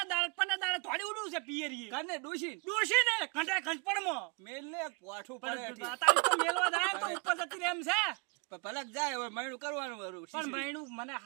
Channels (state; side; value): quieter; left; 31.1 dB